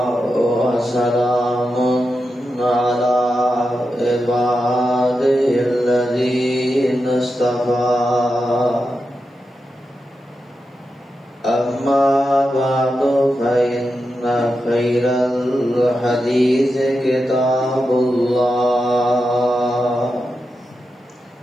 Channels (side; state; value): both; normal; correlation 0.89